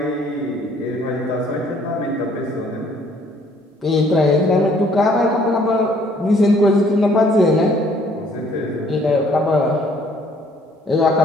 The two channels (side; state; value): both; normal; correlation 0.61